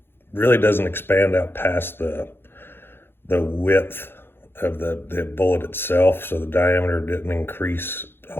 Really doesn't expand out past the width of the bullet itself, so the diameter didn't increase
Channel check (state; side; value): late; right; 0.11 ms